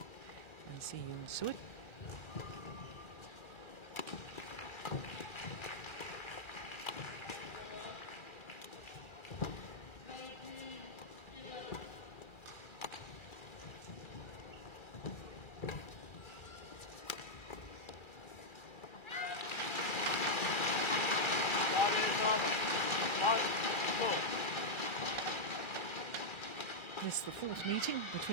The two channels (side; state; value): right; late; 1.3 ms